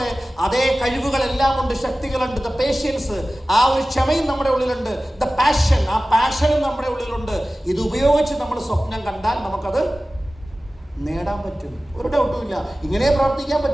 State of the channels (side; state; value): both; normal; correlation 0.96